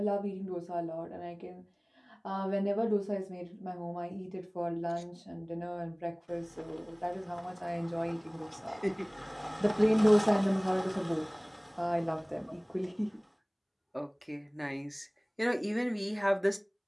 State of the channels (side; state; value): both; identical; correlation 1.00